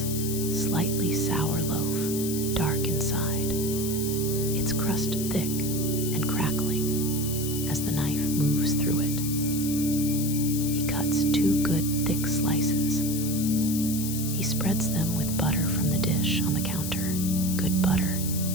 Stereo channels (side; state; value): left; noise; hiss, 6 dB below the sound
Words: slightly sour loaf, dark inside, its crust thick and crackling as the knife moves through it. He cuts 2 good thick slices. He spreads them with butter from the dish on the counter, good butter,